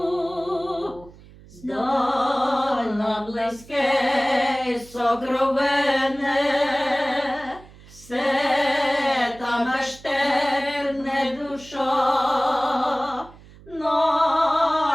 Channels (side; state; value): right; noise; hum, 22 dB below the sound